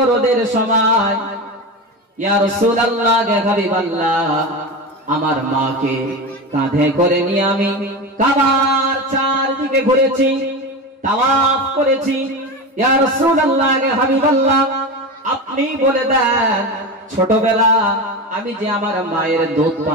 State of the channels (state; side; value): normal; both; correlation 0.22